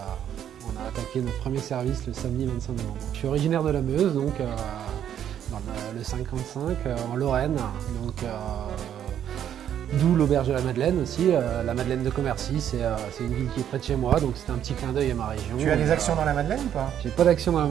on a attaqué notre premier service le samedi 25 novembre. Je suis originaire de la Meuse, donc dans le 55, en Lorraine, donc d'où l'Auberge de la Madeleine aussi. La Madeleine de Commercy, c'est une ville qui est près de chez moi, donc c'était un petit clin d'œil à ma région. Tu as des actions dans la Madeleine ou pas? J'ai pas d'action dans la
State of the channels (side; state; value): left; quieter; 9.9 dB